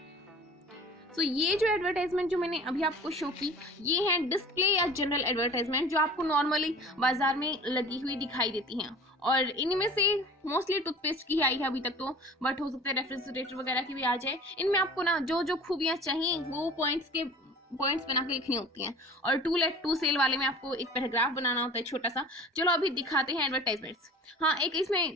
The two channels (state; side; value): normal; both; correlation 0.42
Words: तो ये जो एडवर्टाइजमेंट जो मैंने अभी आपको शो की ये है डिस्प्ले या जनरल एडवर्टाइजमेंट, जो आपको नॉर्मली बाजार में लगी हुई दिखाई देती हैं। और इनमें से मोस्टली टूथपेस्ट की आई है अभी तक तो, बट हो सकता है रेफ्रिजरेटर वगैरह की भी आ जाए। इनमें आपको ना जो जो खूबियाँ चाहिए वो पॉइंट्स बना के लिखनी होती हैं। और टू लेट टू सेल वाले में आपको एक पैराग्राफ बनाना होता है छोटा सा। चलो अभी दिखाते हैं एडवर्टाइजमेंट्स। हाँ, एक